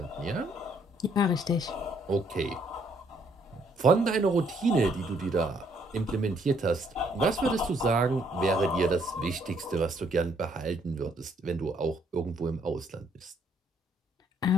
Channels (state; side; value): normal; both; correlation 0.68